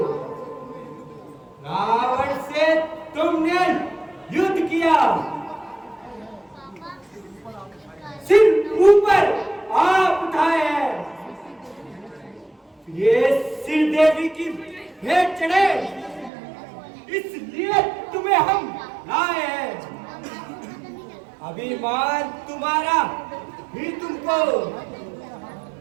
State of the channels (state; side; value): drops out; left; at 16.3 s